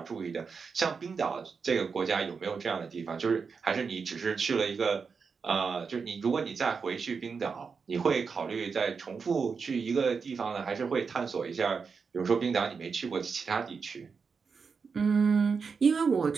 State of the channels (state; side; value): quieter; left; 5.4 dB